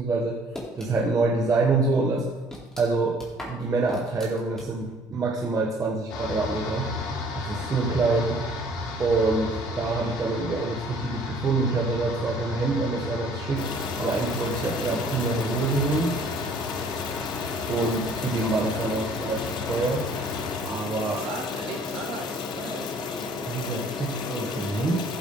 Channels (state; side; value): normal; both; correlation 0.56